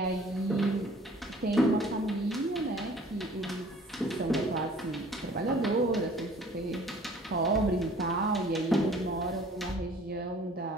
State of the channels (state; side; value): normal; both; correlation 0.52